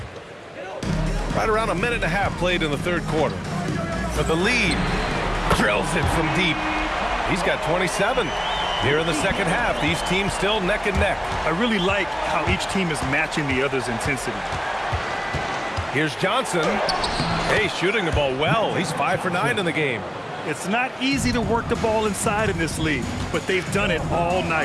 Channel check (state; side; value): identical; both; correlation 1.00